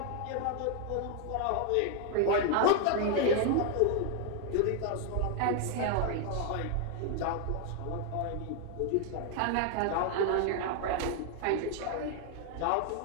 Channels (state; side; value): different; both; correlation 0.00